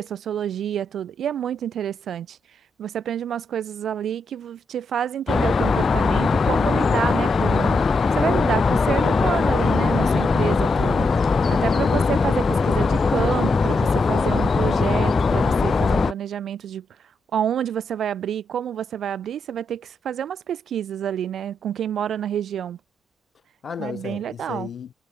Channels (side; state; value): both; normal; correlation 0.82